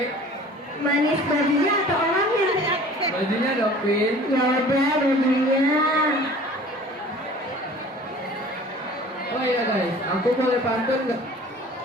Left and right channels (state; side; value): normal; both; correlation 0.46